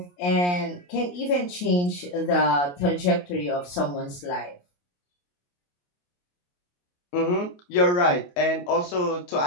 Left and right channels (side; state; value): right; late; 28 ms